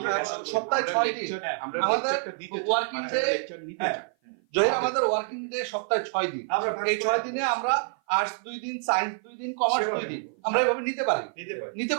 কষ্ট করব, সপ্তাহে 6 দিন আমাদের ওয়ার্কিং ডে, জহির আমাদের ওয়ার্কিং ডে সপ্তাহে 6 দিন, এই 6 দিনে আমরা আর্টস 2 দিন, সায়েন্স 2 দিন, কমার্স 2 দিন, আমরা এভাবে নিতে পারি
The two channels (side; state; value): left; silent; 55 dB below the other